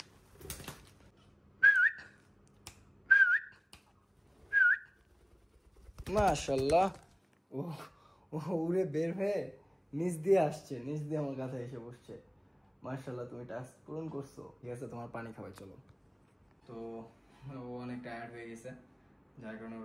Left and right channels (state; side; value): identical; both; correlation 1.00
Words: মাশাআল্লাহ, ও উড়ে বের হয়ে নিচ দিয়ে আসছে, নিচ দিয়ে আমার কাছে এসে বসছে। মাশাআল্লাহ, তুমি টাস্ক পূরণ করছো। ঠিক আছে, তোমার পানি খাওয়াই চলো। তো টায়ার্ড হয়ে গেছে, যার কারণে